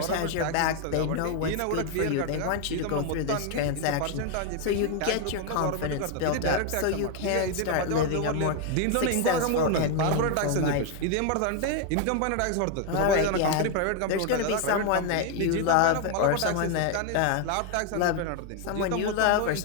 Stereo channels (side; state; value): both; different; correlation 0.01